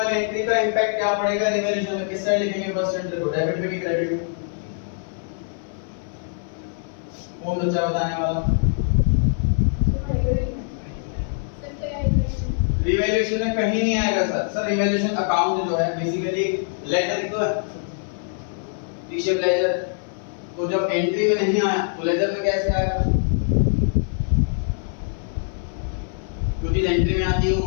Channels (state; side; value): silent; right; 58 dB below the other